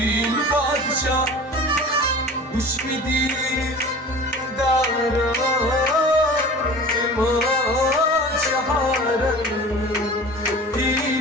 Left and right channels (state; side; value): normal; both; correlation 0.39